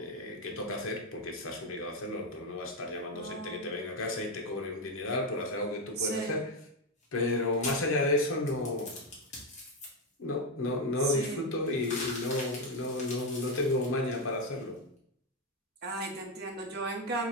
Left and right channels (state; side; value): normal; both; correlation 0.08